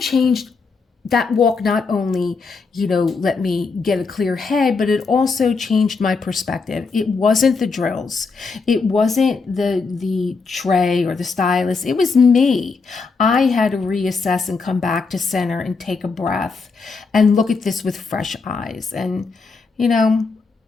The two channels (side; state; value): right; quieter; 4.5 dB